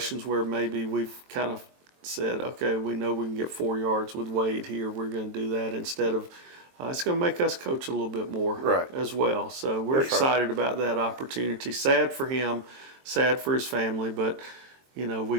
where maybe we've kind of said, okay, we know we can get 4 yards with Wade here. We're going to do that instead of, it's going to make us coach a little bit more as well. So we're excited about that opportunity. Sad for him, sad for his family, but, we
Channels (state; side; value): late; left; 23 ms